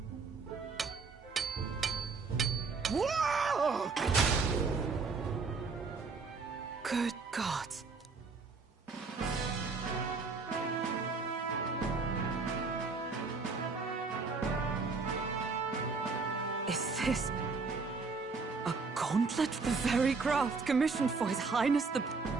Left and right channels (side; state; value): left; quieter; 4.5 dB